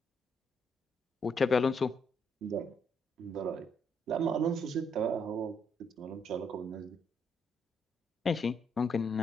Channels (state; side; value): normal; both; correlation 0.73